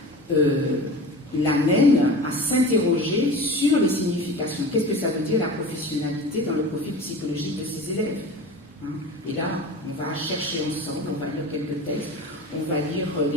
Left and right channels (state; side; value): normal; both; correlation 0.34